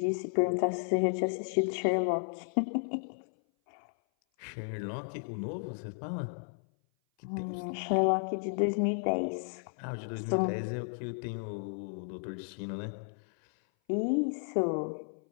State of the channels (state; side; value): silent; right; 56 dB below the other